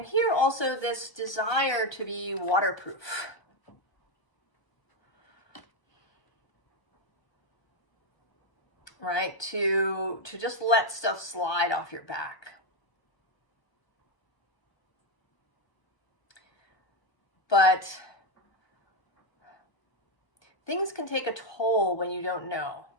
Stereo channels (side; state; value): right; late; 1.3 ms